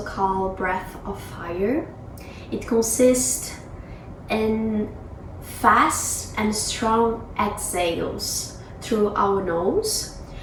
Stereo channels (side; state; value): both; identical; correlation 1.00